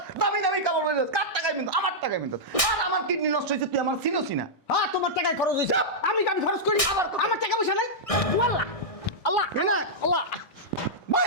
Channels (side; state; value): right; late; 1.6 ms